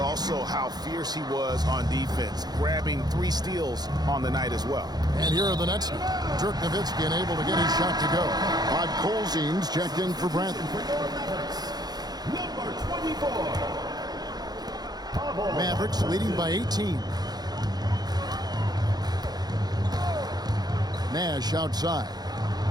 how fierce he was on defense, grabbing 3 steals on the night as well. And here are the Nets. Dirk Nowitzki unable to get his shot to go. Rod Colzine's checked in for Brantley. Number 24. Mavericks leading by 18. Nash outside.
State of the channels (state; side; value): late; left; 0.19 ms